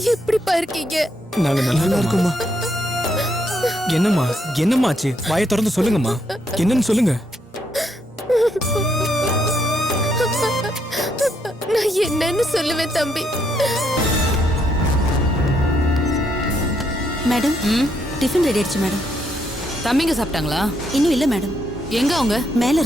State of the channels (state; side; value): normal; both; correlation 0.75